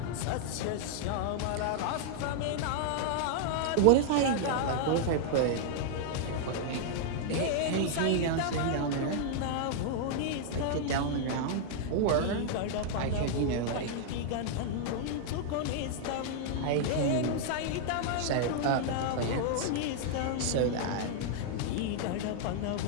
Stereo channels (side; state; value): both; different; correlation -0.01